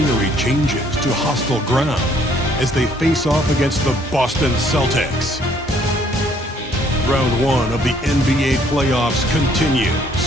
changes to hostile ground as they face off against the Boston Celtics. Round 1 of the NBA playoffs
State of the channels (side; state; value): both; normal; correlation 0.63